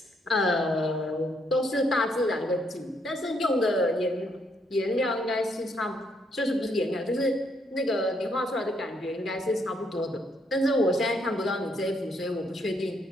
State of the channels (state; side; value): normal; both; correlation 0.73